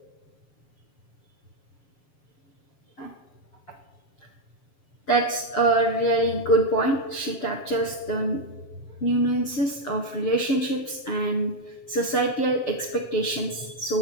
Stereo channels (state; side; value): late; right; 7.4 ms